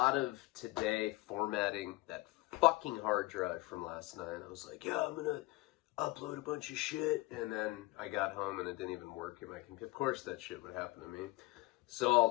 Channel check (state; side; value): quieter; right; 21.6 dB